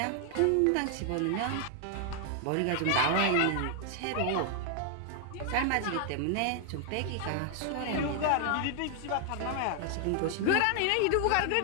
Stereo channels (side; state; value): both; different; correlation 0.00